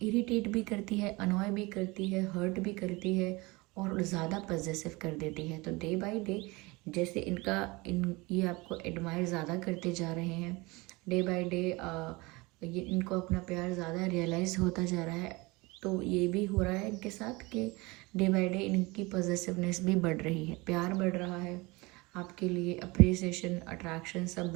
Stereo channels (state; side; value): quieter; left; 24.1 dB